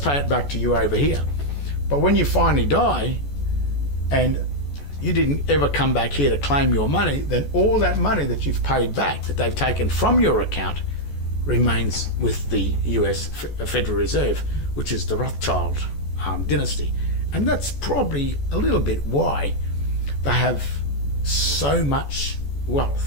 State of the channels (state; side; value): late; right; 14 ms